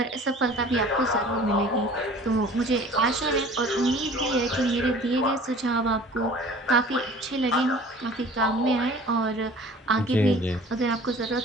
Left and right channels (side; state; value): both; normal; correlation 0.46